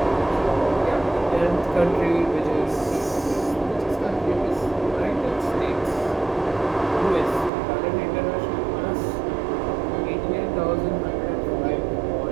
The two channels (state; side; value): drops out; left; at 7.5 s